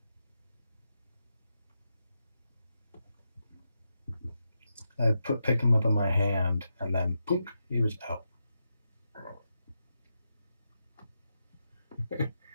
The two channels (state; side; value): inverted; both; correlation -0.87